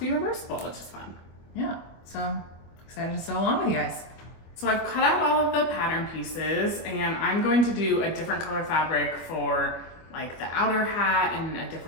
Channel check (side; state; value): right; late; 25 ms